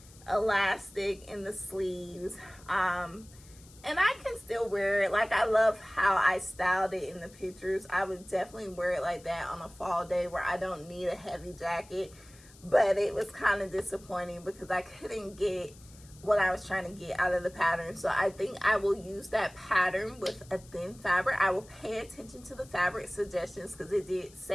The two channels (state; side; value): noise; left; hiss, 23 dB below the sound